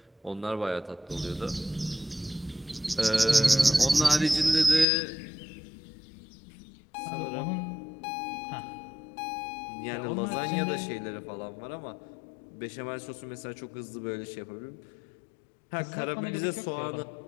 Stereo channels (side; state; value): right; drops out; at 4.9 s